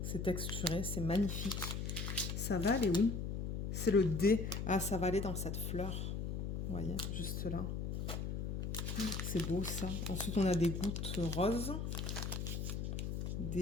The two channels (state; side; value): noise; left; hum, 2 dB below the sound